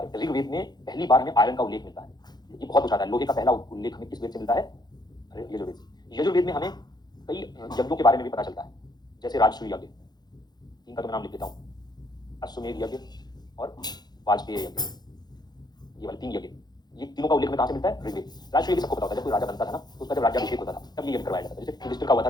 में, ऋग्वेद में पहली बार हमें आयरन का उल्लेख मिलता है, ये बहुत पूछा है। लोहे का पहला उल्लेख हमें किस वेद से मिलता है? यजुर्वेद से। यजुर्वेद में हमें कई यज्ञों के बारे में भी पता चलता है, जैसे राजसूय यज्ञ, इनका तो मैं नाम लिख देता हूँ, अश्वमेध यज्ञ और वाजपेय यज्ञ, ये वाले 3 यज्ञ, ये तीनों का उल्लेख हमें कहाँ से मिलता है? ऋग्वेद। राजसूय यज्ञ सबको पता होता है, जब कोई राजा बनता था ना तो उसका जब राज्याभिषेक होता था तब ये यज्ञ करवाया जाता था। जैसे युधिष्ठिर का हुआ था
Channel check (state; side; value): late; right; 0.20 ms